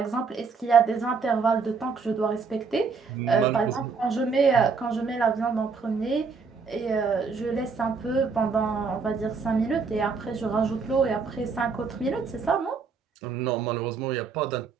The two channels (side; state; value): left; quieter; 5.0 dB